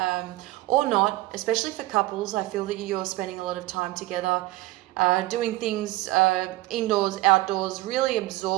or not, especially for couples, I feel that you're spending a lot of time together, doing things indoors, outdoors, really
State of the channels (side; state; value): left; quieter; 18.1 dB